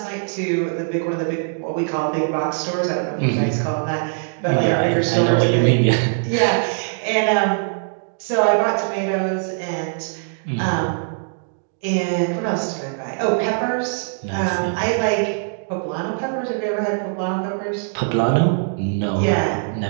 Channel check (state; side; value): silent; left; digital silence